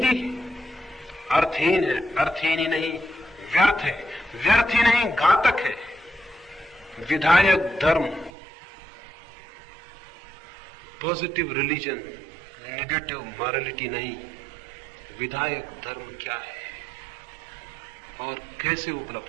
अर्थहीन है, अर्थहीन ही नहीं व्यर्थ है, व्यर्थ ही नहीं घातक है। विधायक धर्म, पॉजिटिव रिलीजन, नेगेटिव मॉरलिटी नहीं। विधायक धर्म क्या है और कैसे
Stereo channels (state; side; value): drops out; left; at 8.3 s